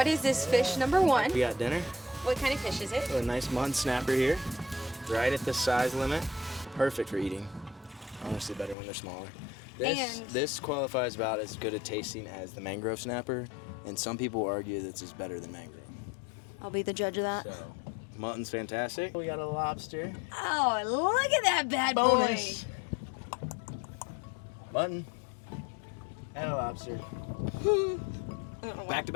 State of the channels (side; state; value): right; drops out; at 8.8 s